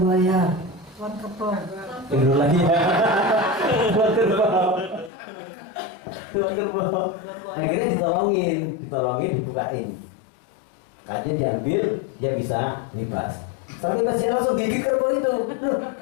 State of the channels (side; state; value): right; drops out; at 5.1 s